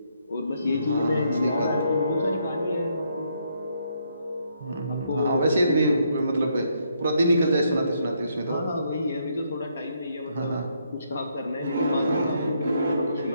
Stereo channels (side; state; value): both; inverted; correlation -0.74